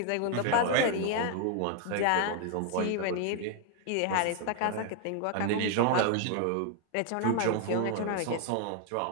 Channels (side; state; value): both; different; correlation 0.00